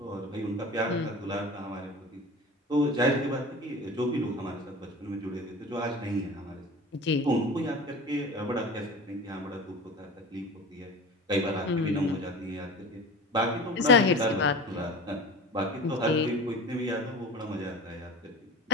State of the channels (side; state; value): both; normal; correlation 0.35